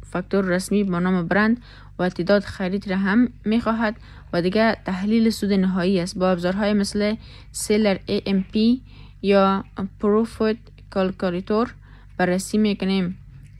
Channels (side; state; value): both; identical; correlation 1.00